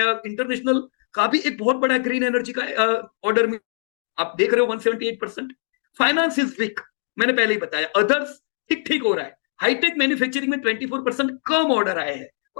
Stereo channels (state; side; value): silent; right; digital silence